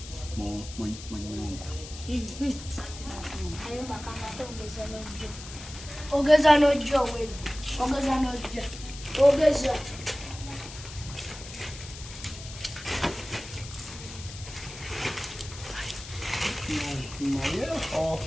mu nyumba ayumba kangate ogeza n'ojja owedde ogeza naye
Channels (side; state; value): left; noise; hiss, 13 dB below the sound